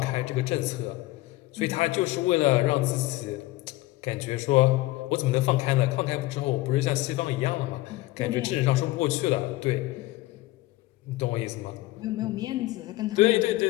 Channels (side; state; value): right; quieter; 18.4 dB